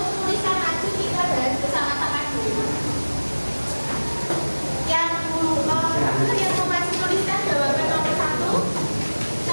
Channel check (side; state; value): both; inverted; correlation -1.00